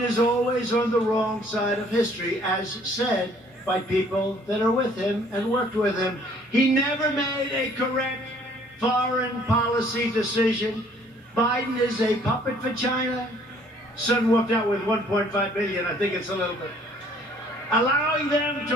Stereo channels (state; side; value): normal; both; correlation 0.59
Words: is always on the wrong side of history, as said by people that are with him and worked with him. He never made a correct foreign policy decision. Biden is a puppet for China. Son walked out with $1.5 billion. I think it's a little bit. Allowing them